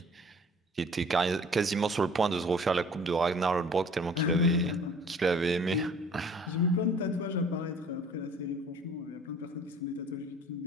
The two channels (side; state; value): both; normal; correlation 0.51